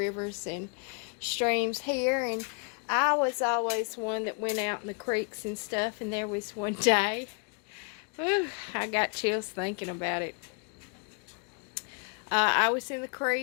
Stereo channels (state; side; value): quieter; right; 37.6 dB